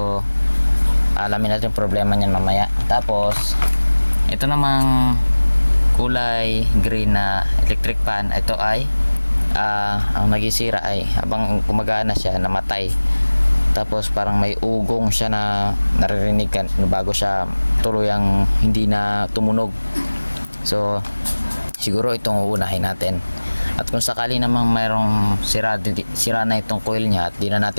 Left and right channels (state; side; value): inverted; both; correlation -1.00